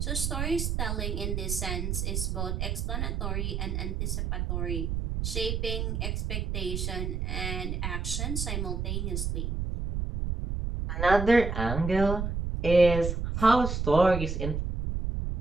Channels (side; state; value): right; noise; rumble, 1 dB below the sound